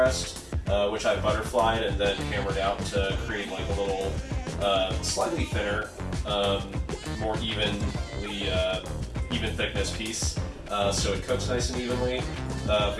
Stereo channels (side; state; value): both; identical; correlation 1.00